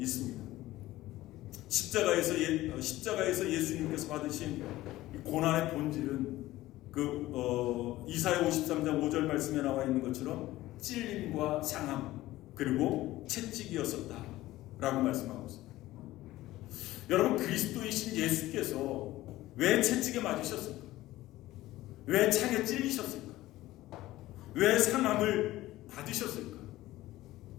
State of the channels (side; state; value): right; quieter; 16.5 dB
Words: 있습니다. 십자가에서 예수님께서 받으신 고난의 본질은 이사야 53장 5절 말씀에 나와 있는 것처럼 찔림과 상함 그리고 채찍이었었다 라고 말씀하고 있습니다. 여러분, 그리스도이신 예수께서 왜 채찍에 맞으셨을까? 왜 창에 찔리셨을까? 왜 상함을 받으셨을까?